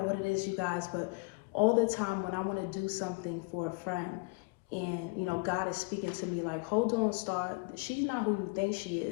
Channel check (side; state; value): right; quieter; 28.7 dB